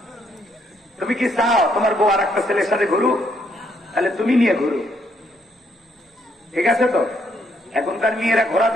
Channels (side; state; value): both; normal; correlation 0.72